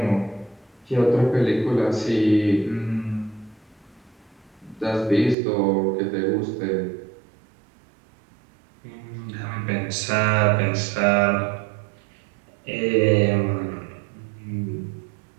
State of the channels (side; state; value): left; drops out; at 5.4 s